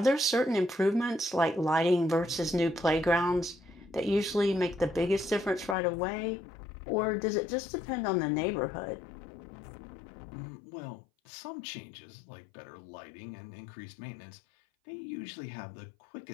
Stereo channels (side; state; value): right; drops out; at 5.8 s